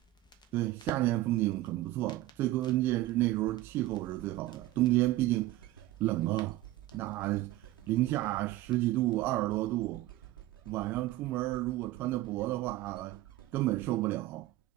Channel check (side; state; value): left; quieter; 16.5 dB